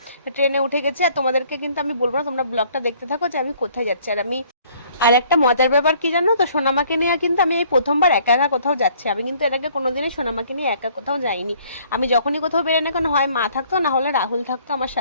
ট্রেনে উঠে গেছি, আর তোমাদেরকে কিন্তু আমি বলবো না, তোমরা ব্লগটা দেখতে থাকো যে আমি কোথায় যাচ্ছি। আর একটা মজার ব্যাপার কি জানো তো, সোনামাকে নিয়ে কিন্তু আমি এই প্রথমবার একা একা কোথাও যাচ্ছি। আমি কিন্তু এর আগে কোনোদিনই সোনামাকে নিয়ে একা কোথাও যাইনি। আমি যখনই কোথাও বেরোই না কেন, হয় মা থাকতো না হলে রাহুল থাকতো আমার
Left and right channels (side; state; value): both; inverted; correlation -0.59